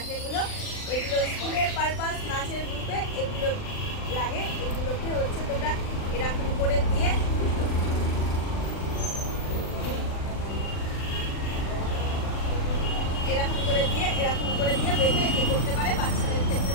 এগুলো স্কুলের পারপাস, নাচের গ্রুপে এগুলো লাগে। এগুলোকে হচ্ছে তোমরা এরকম করে দিয়ে এরকম করে দিয়ে বেঁধে এ করতে পারে। বাচ্চাদের ক্ষেত্রে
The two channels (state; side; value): late; right; 39 ms